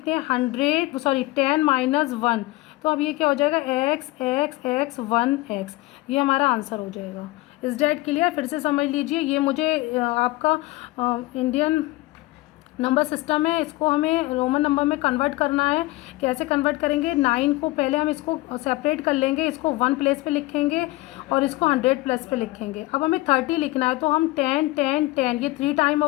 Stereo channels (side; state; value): right; quieter; 20.1 dB